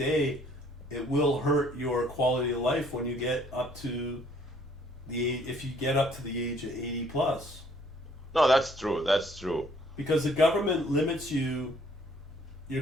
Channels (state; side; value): normal; both; correlation 0.61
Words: it will hurt your quality of life when you get up to if you get up to the age of 80 plus. No, that's true. That's true. Because the government limits